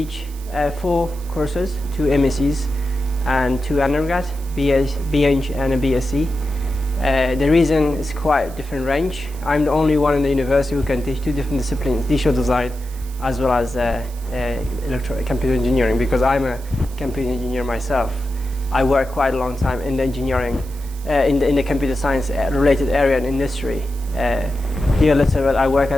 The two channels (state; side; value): noise; right; hiss, 21 dB below the sound